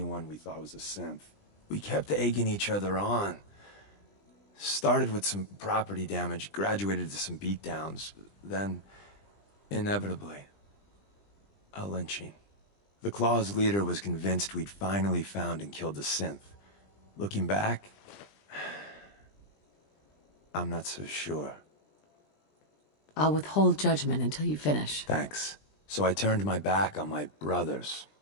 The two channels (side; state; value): right; late; 20 ms